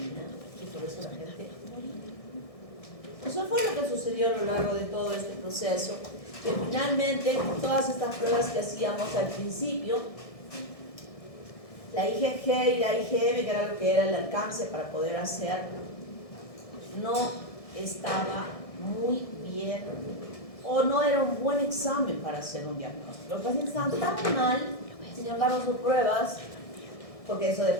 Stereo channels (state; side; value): late; right; 1.6 ms